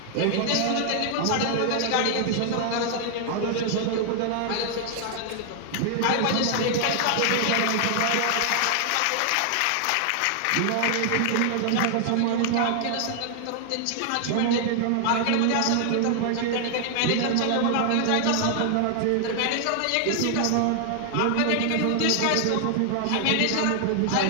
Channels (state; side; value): different; both; correlation 0.00